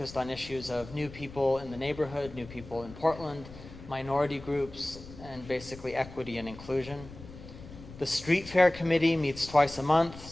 on issues of new people in the neighborhood, new people in Portland, minority groups, and basically equity and inclusion. The Street Fair Committee meets twice a month,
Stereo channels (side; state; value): left; noise; rumble, 16 dB below the sound